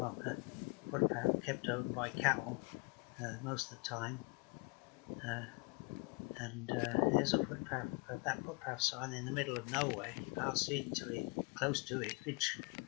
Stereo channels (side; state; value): right; quieter; 30.0 dB